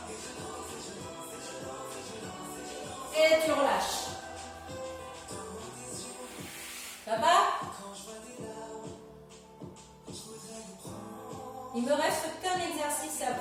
Et tu relâches. Ça va? Il me reste qu'un exercice à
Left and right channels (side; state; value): both; identical; correlation 1.00